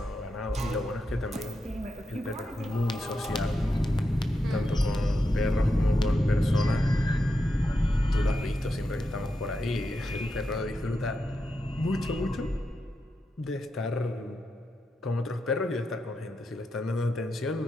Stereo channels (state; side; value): normal; both; correlation 0.87